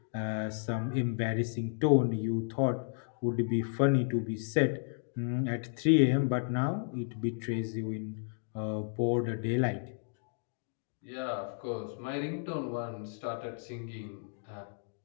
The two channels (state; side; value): silent; right; digital silence